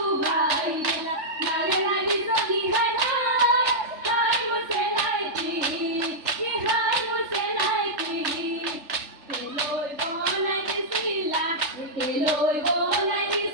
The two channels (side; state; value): left; late; 3.4 ms